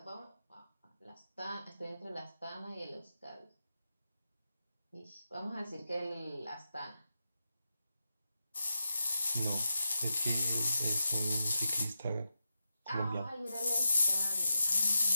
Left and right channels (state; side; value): inverted; both; correlation -0.88